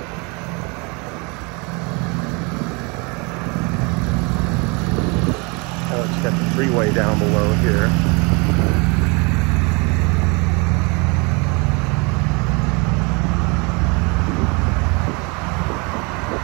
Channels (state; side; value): quieter; left; 30.0 dB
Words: freeway down below here.